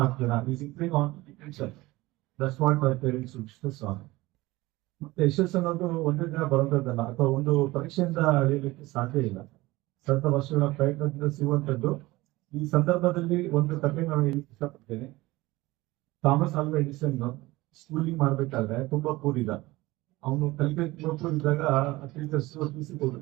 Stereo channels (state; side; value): quieter; left; 19.7 dB